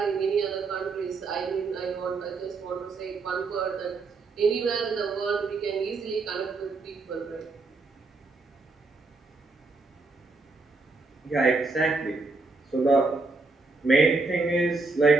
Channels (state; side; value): quieter; left; 3.8 dB